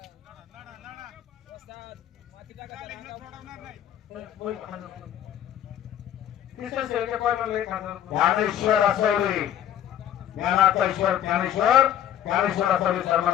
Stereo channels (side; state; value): right; quieter; 10.8 dB